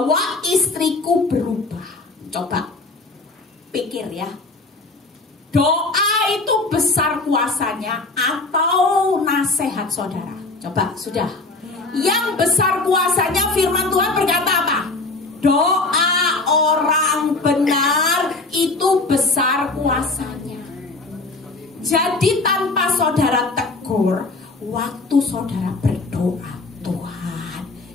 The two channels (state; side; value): quieter; right; 3.4 dB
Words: istriku berubah. Coba pikir ya, doa itu besar kuasanya atau nasihat saudara? Coba, sudah. Yang besar kuasanya firman Tuhan berkata apa? Doa orang benar itu besar kuasanya. Jadi saudara berdoa, Tuhan,